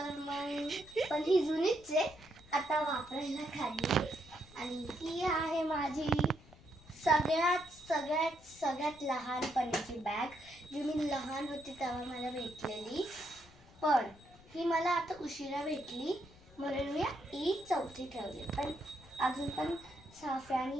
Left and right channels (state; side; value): noise; left; rumble, 23 dB below the sound